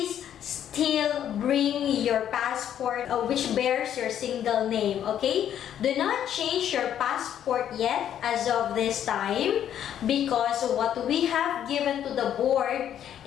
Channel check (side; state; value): right; quieter; 10.1 dB